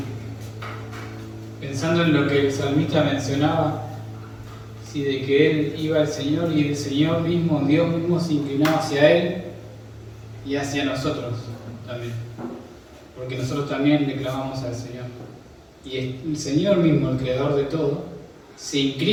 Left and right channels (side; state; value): both; identical; correlation 1.00